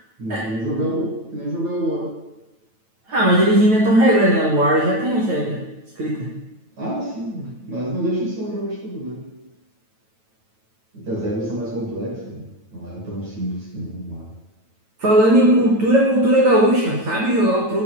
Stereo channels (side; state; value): left; late; 9.1 ms